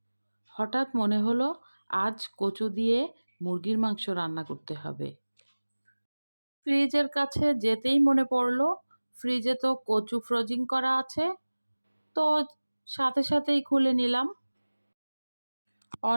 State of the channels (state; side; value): inverted; both; correlation -1.00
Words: হঠাৎ মনে হলো আজ কচু দিয়ে মুরগির মাংস রান্না করতে হবে। ফ্রিজের কাছে যেতেই মনে পড়লো ফ্রিজে তো কচু ফ্রোজিং করা আছে, তো সাথে সাথেই খুলে নিলাম।